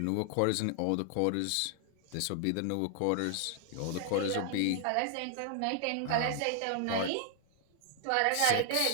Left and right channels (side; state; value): both; different; correlation 0.00